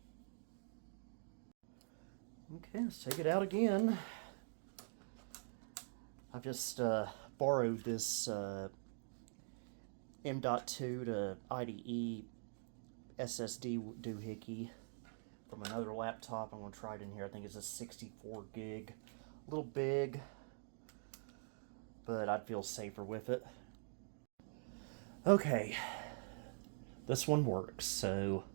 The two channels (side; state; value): left; silent; digital silence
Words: Okay, let's take it out again. I've just borrowed this M.2 to IDE SSD doohickey from another laptop. I'm going to try it in here. I think it's a 64 gig. A little big, but I'd feel safer with it. Okay, this one works, so